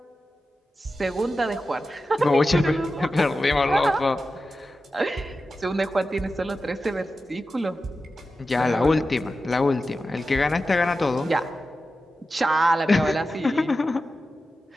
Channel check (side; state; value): both; normal; correlation 0.92